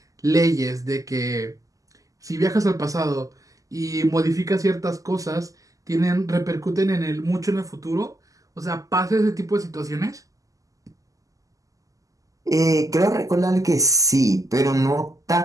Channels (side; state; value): left; late; 0.17 ms